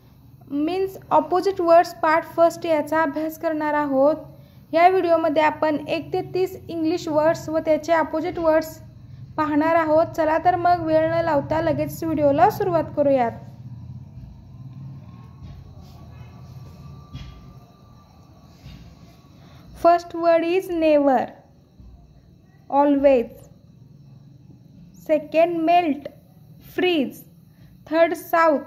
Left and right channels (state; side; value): identical; both; correlation 1.00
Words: means opposite words part first याचा अभ्यास करणार आहोत. या व्हिडिओमध्ये आपण 1 ते 30 इंग्लिश वर्ड्स व त्याचे ऑपोजिट वर्ड्स पाहणार आहोत. चला तर मग वेळ न लावता लगेच व्हिडिओला सुरुवात करूयात. First word is never, always. Second, melt, freeze. Third,